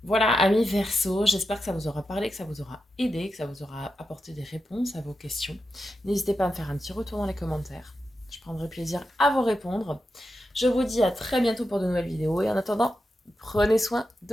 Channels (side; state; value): both; normal; correlation 0.88